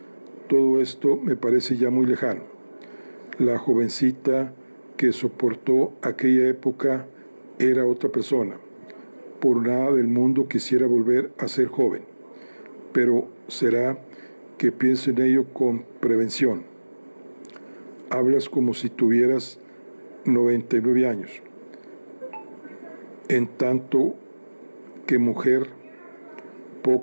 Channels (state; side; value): inverted; both; correlation -1.00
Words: todo esto me parece ya muy lejano. La jovencita que soportó aquella época era otra persona. Por nada del mundo quisiera volver a ser joven, pero será que pienso en ello con prevención. Hablas como si tuvieras 99 años. En tanto que mujer,